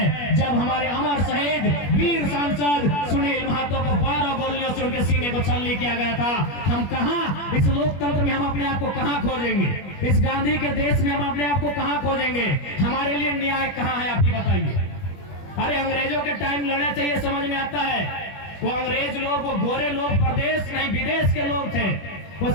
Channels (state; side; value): late; right; 21 ms